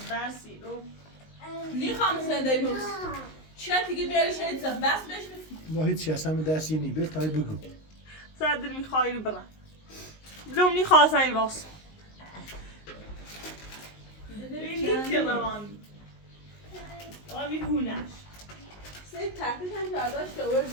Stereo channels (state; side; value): late; right; 19 ms